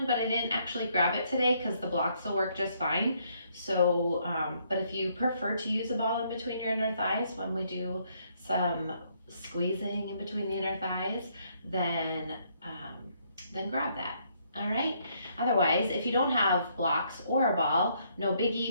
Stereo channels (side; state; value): both; inverted; correlation -0.70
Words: but I didn't actually grab it today because the blocks will work just fine. So, but if you prefer to use a ball in between your inner thighs when we do some squeezing in between the inner thighs, then grab that. All right. Otherwise, if you don't have blocks or a ball, no